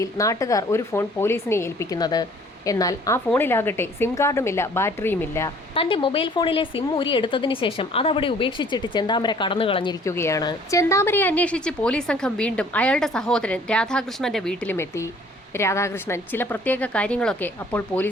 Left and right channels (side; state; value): both; normal; correlation 0.55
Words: നാട്ടുകാർ ഒരു ഫോൺ പോലീസിനെ ഏൽപ്പിക്കുന്നത്. എന്നാൽ ആ ഫോണിലാകട്ടെ സിം കാർഡുമില്ല, ബാറ്ററിയുമില്ല. തന്റെ മൊബൈൽ ഫോണിലെ സിം ഊരിയെടുത്തതിനു ശേഷം അതവിടെ ഉപേക്ഷിച്ചിട്ട് ചെന്താമര കടന്നു കളഞ്ഞിരിക്കുകയാണ്. ചെന്താമരയെ അന്വേഷിച്ച് പോലീസ് സംഘം വീണ്ടും അയാളുടെ സഹോദരൻ രാധാകൃഷ്ണന്റെ വീട്ടിലുമെത്തി. രാധാകൃഷ്ണൻ ചില പ്രത്യേക കാര്യങ്ങളൊക്കെ അപ്പോൾ